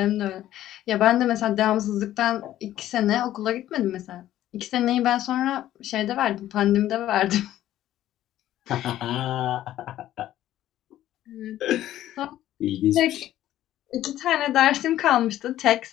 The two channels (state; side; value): quieter; right; 13.2 dB